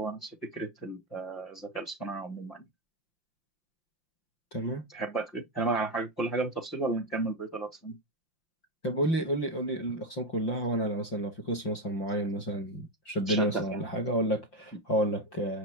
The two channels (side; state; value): right; late; 5.8 ms